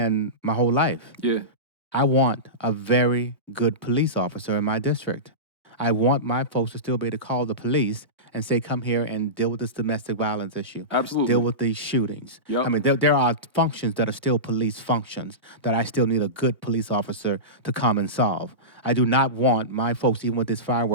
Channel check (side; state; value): both; normal; correlation -0.19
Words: my whole life. Yeah. I want a very good police officer in my district. I want my folks to still be able to call the police and say, come here and deal with this domestic violence issue. Absolutely. Deal with these shootings. Yep. I mean, there are functions that are still police functions that I still need a good police officer to come and solve. I do not want my folks, even with this